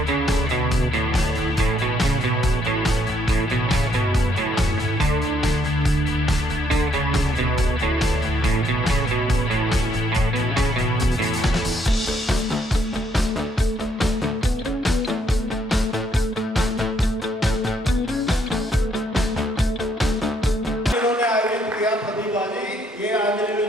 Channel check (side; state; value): both; normal; correlation 0.71